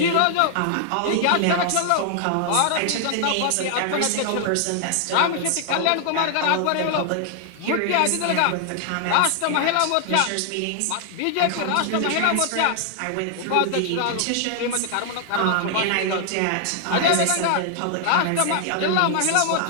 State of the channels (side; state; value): both; different; correlation 0.00